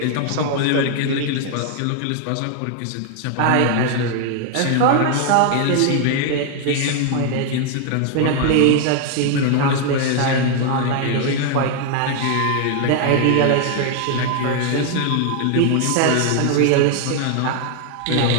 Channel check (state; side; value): different; both; correlation 0.00